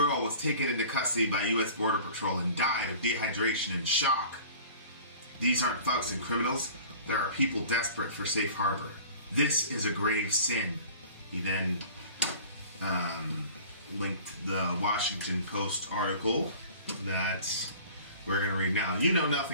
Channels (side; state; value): both; inverted; correlation -0.45